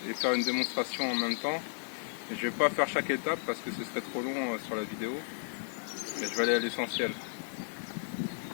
et faire une démonstration en même temps. Et je ne vais pas faire chaque étape parce que ce serait trop long sur la vidéo, mais je vais aller à l'essentiel.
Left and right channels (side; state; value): right; silent; digital silence